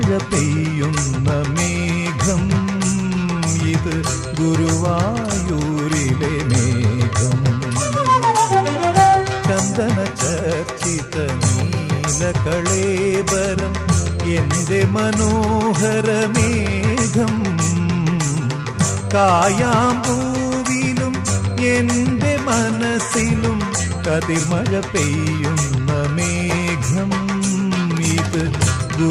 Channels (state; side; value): identical; both; correlation 1.00